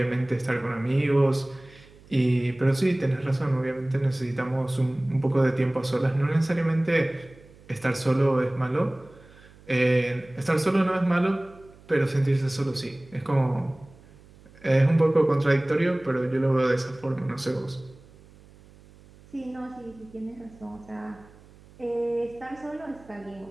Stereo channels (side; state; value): right; noise; hum, 24 dB below the sound